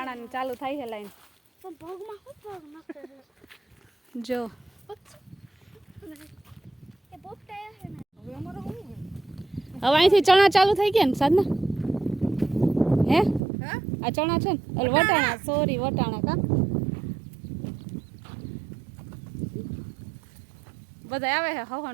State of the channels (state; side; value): drops out; left; at 13.4 s